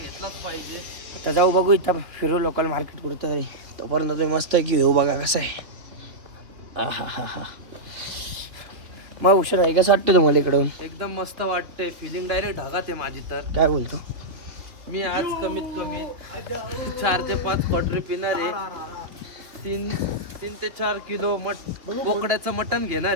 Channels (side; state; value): left; late; 2.7 ms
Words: पाहिजे. आता जाऊ बघू इथं फिरू लोकल मार्केट कुठं तरी. तोपर्यंत तुम्ही मस्त की घेऊ बघा कसं आहे. मग उशीर आहे कसं वाटतं तुम्हाला इकडून? एकदम मस्त वाटते. फिलिंग डायरेक्ट ढगात आहे माझी. तर काय बोलतो? मी आज कमीत कमी 4 ते 5 क्वार्टरी पिणार आहे. 3 ते 4 किलो बोकड्याचं मटण